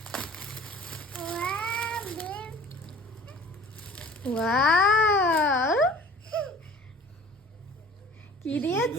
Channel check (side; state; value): both; normal; correlation 0.47